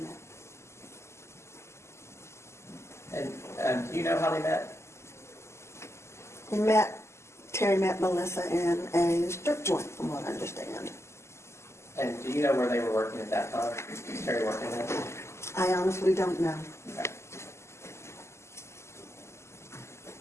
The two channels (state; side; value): late; right; 0.13 ms